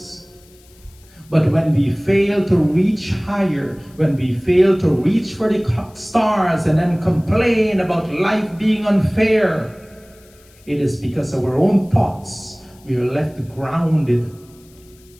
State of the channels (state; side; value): noise; left; hiss, 29 dB below the sound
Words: But when we fail to reach higher, when we fail to reach for the stars and then complain about life being unfair, it is because of our own thoughts we are left grounded.